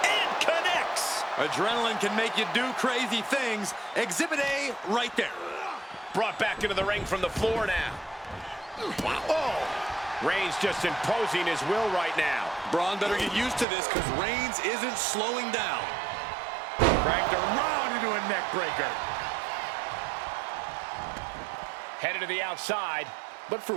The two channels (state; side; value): drops out; left; at 13.7 s